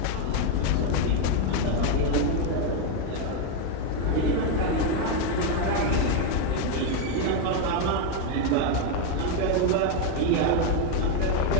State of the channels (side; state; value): both; different; correlation 0.01